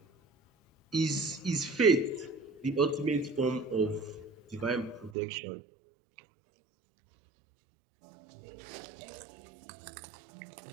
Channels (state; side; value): drops out; left; at 5.1 s